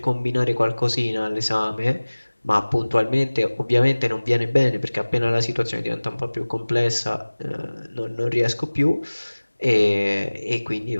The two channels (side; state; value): both; inverted; correlation -1.00